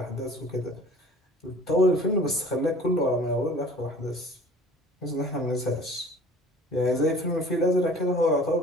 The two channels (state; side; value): normal; both; correlation 0.48